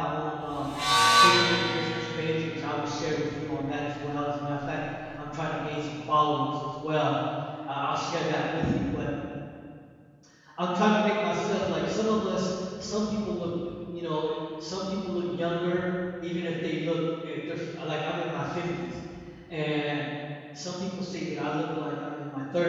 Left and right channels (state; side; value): identical; both; correlation 1.00